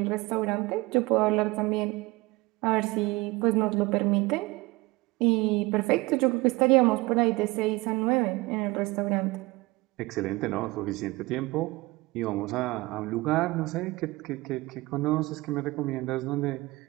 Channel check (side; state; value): left; quieter; 22.0 dB